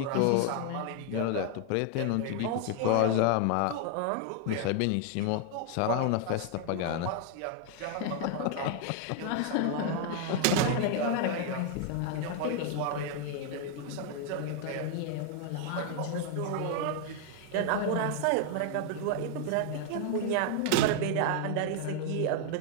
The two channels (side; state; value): both; different; correlation 0.00